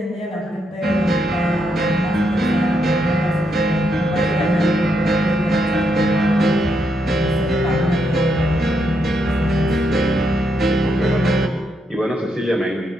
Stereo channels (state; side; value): normal; both; correlation 0.79